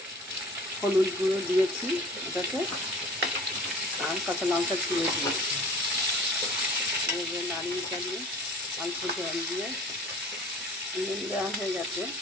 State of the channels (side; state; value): both; normal; correlation 0.44